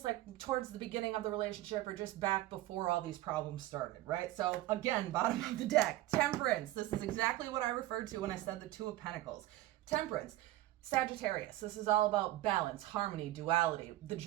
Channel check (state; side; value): quieter; left; 15.9 dB